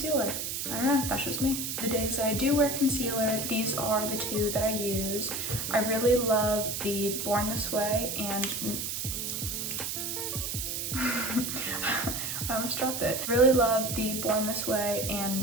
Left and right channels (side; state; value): right; noise; hiss, 3 dB below the sound